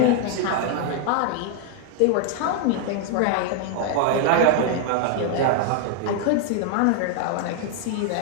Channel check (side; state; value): both; different; correlation 0.00